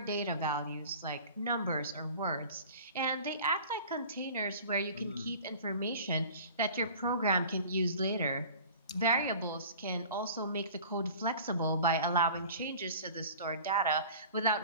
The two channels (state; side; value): inverted; both; correlation -0.43